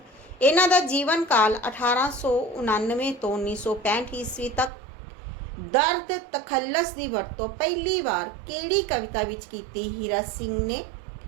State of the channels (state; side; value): drops out; left; at 4.7 s